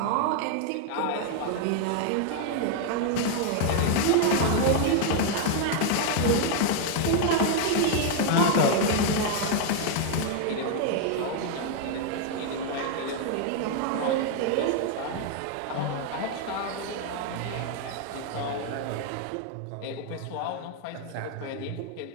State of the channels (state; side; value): different; both; correlation 0.00